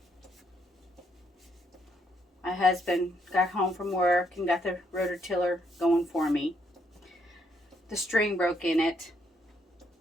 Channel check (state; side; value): normal; both; correlation 0.73